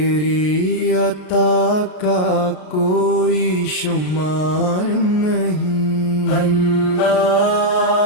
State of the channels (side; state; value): right; late; 33 ms